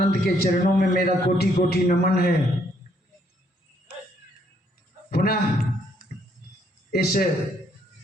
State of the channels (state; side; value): normal; both; correlation 0.69